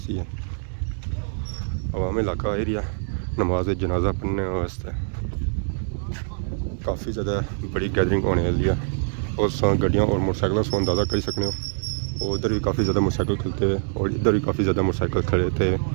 है अवामी इलाका एरिया नमाज जनाजा पढ़ने वास्ते काफ़ी ज़्यादा बड़ी गैदरिंग होने वाली है और गड्डियाँ और मोटरसाइकिलों से अंदाज़ा कर सकते हो और उधर भी काफ़ी ज़्यादा मोटरसाइकिल खलते हुए और इधर भी काफ़ी ज़्यादा मोटरसाइकिल खड़े थे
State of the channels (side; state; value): left; silent; digital silence